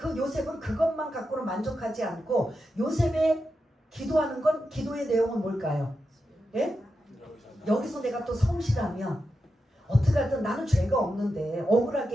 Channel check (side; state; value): both; normal; correlation 0.88